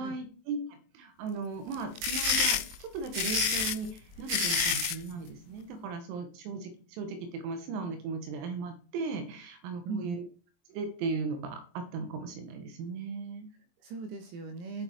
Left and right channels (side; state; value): left; late; 23 ms